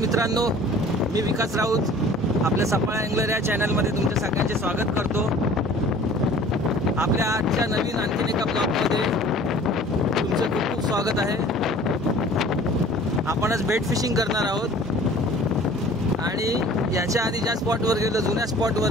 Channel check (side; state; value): both; normal; correlation 0.48